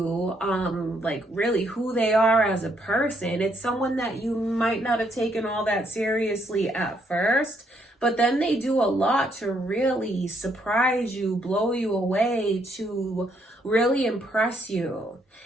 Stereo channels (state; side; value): normal; both; correlation 0.72